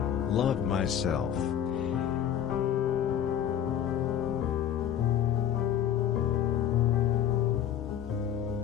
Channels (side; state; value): right; quieter; 9.7 dB